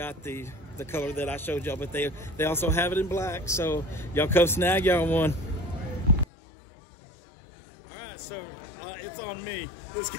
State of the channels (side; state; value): right; drops out; at 6.2 s